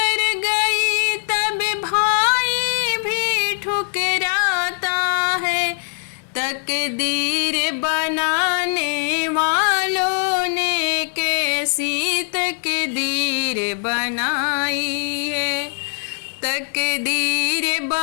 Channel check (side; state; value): right; silent; 65 dB below the other